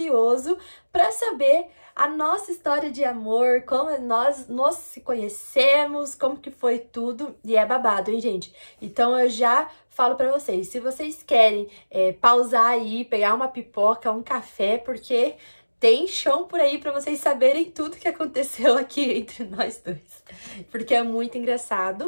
para saber a nossa história de amor, como nós nos se conhecemos, como que foi tudo, e é babado, hein, gente? Então eu já falo pra vocês, se vocês querem pausar aí, pegar uma pipoca, um café, porque tem chão por aí pra vocês saberem tudo que aconteceu aqui entre nós dois, porque é muito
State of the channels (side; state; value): both; inverted; correlation -1.00